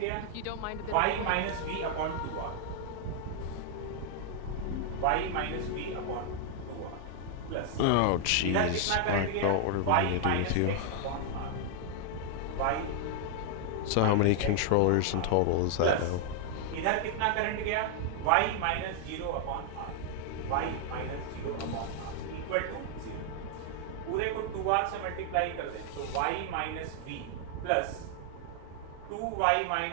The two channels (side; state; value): both; different; correlation 0.00